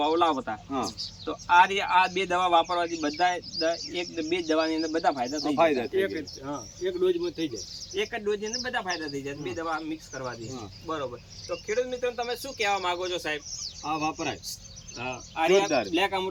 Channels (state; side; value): identical; both; correlation 1.00